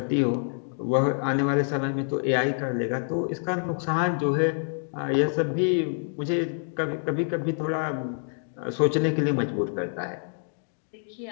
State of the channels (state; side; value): silent; right; digital silence